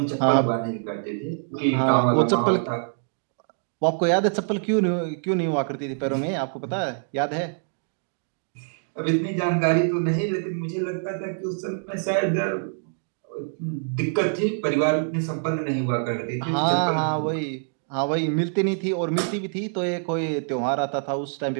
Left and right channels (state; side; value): silent; left; digital silence